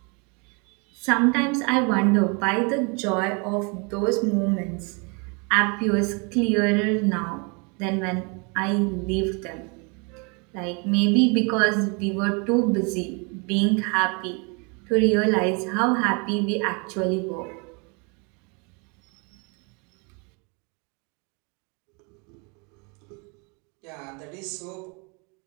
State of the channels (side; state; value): left; quieter; 32.9 dB